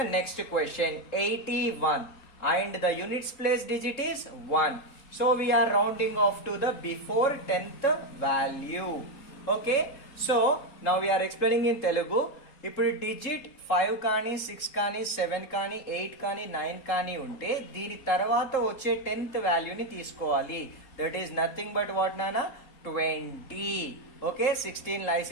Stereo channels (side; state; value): right; late; 3.7 ms